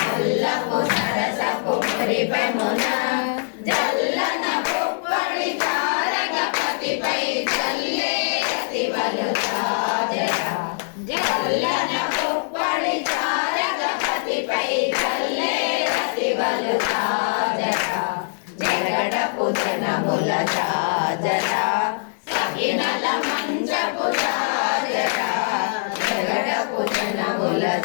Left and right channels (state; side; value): silent; right; digital silence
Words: సరసపు మురిపెమున జల్లన పుప్పడి తారగపతిపై జల్లే అతివలు జాజరా జల్లన పుప్పడి తారగపతిపై జల్లే అతివలు జాజరా జగడపు జనముల జాజరా సగినల మంచపు జాజరా జగడపు జనముల